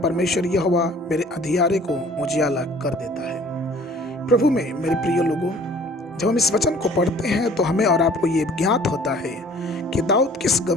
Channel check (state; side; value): normal; both; correlation 0.52